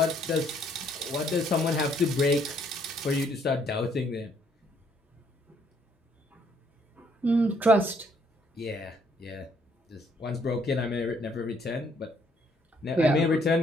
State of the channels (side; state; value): both; normal; correlation 0.67